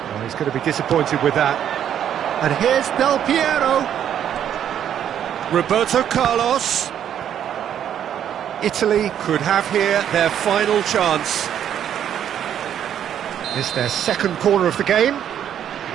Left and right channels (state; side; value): quieter; left; 9.7 dB